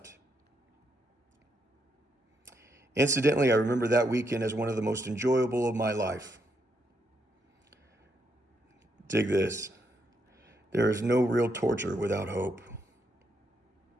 Incidentally, I remember that weekend as one of the most enjoyable of my life. Dig this. There is no real torture without hope.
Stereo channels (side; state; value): both; normal; correlation 0.78